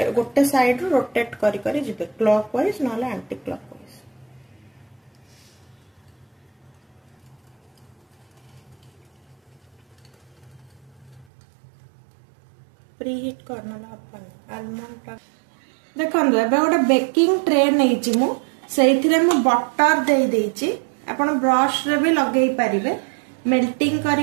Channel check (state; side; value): drops out; left; at 11.2 s